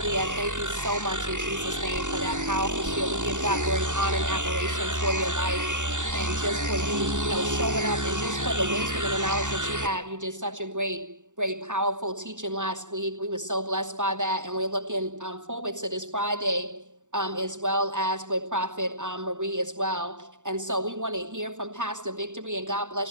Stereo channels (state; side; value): late; left; 0.86 ms